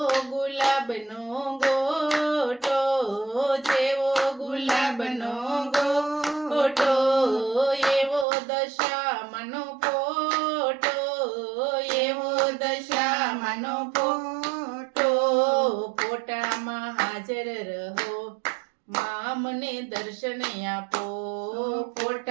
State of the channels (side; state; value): left; drops out; at 8.2 s